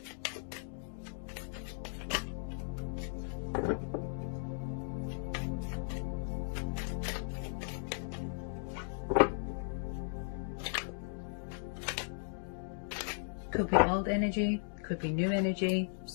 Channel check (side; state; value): right; silent; digital silence